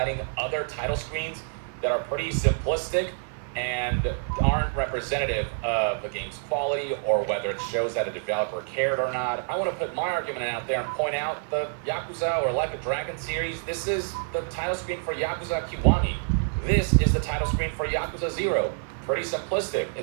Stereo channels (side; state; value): left; silent; 60 dB below the other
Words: other title screens that are pretty simplistic and aren't representative of the game's quality or whether it shows that a developer cared or not. I want to put my argument out there and point out the Yakuza or Like a Dragon series. This is the title screen for Yakuza Kiwami. This is the title screen for Yakuza 0. Pretty simplistic.